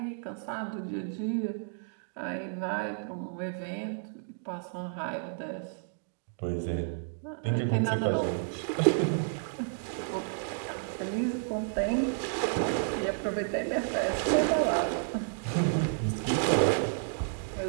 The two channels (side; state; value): left; silent; digital silence